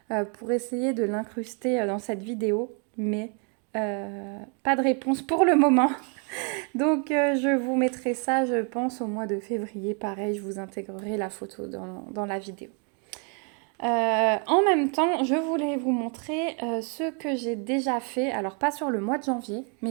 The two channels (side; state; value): left; quieter; 38.7 dB